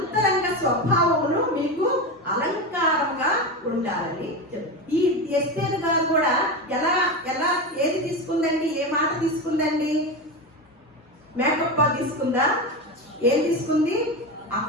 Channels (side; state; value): both; normal; correlation 0.19